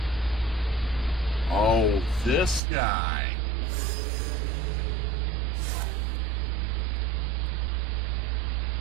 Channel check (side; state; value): left; drops out; at 2.6 s